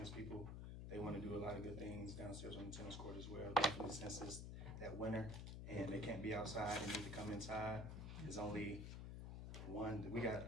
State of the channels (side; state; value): left; noise; hum, 6 dB below the sound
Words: people. They want to do a lot of good things downstairs on the tennis court as well. Definitely since it's that winter and they can't be outside, they need to come inside. There's only one, we got,